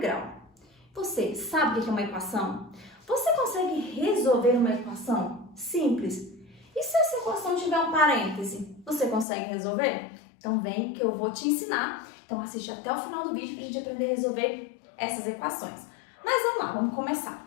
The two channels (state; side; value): drops out; right; at 9.2 s